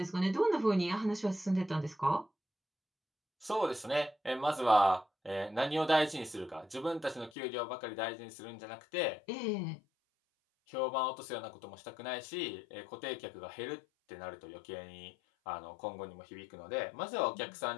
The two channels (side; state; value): right; drops out; at 7.3 s